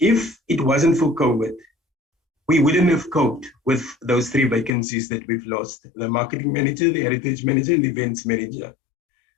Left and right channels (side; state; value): right; drops out; at 4.7 s